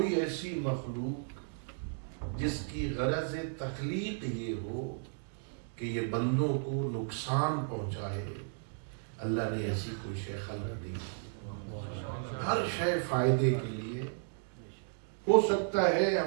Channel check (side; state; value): left; silent; digital silence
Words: ایسی مخلوق جس کی غرض تخلیق یہ ہو کہ یہ بندوں کو نقصان پہنچائے، اللہ نے ایسی کوئی شے خلق دی۔ ہر شے فائدے کے لیے ہو سکتا ہے